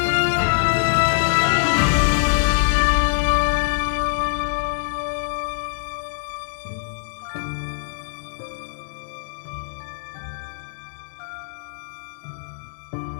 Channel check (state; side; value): silent; right; digital silence